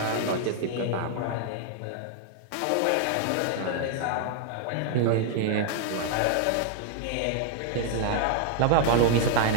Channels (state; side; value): different; both; correlation 0.00